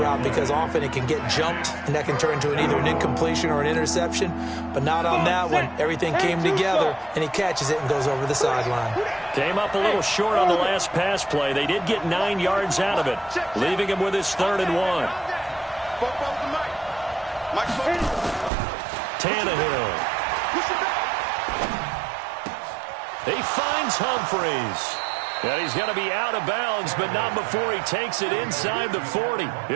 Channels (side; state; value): left; drops out; at 18.5 s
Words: because often it can get jumped, and that can turn into either an incompletion or an interception. But not on that one. Everything came together, and he catches it and goes over the sideline. Came up a little short on the last pass play. They did get 9 yards out of it, leaving him with his 3rd and 1. Tannehill. He finds Humphreys. And he's going to be out of bounds, but not before he takes it inside the 40.